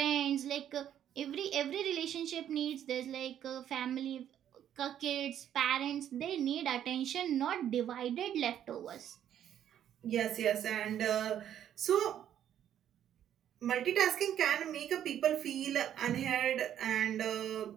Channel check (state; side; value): quieter; left; 10.4 dB